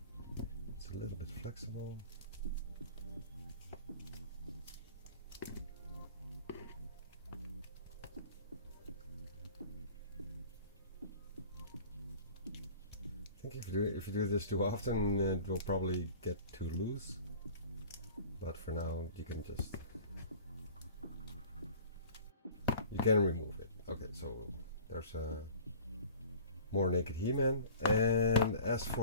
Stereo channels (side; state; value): both; inverted; correlation -0.44